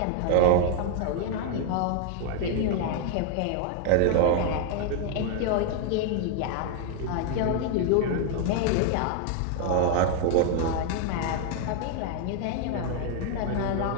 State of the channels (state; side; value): different; both; correlation 0.00